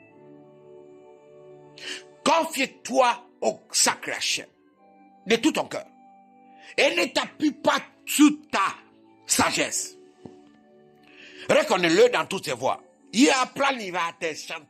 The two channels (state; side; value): identical; both; correlation 1.00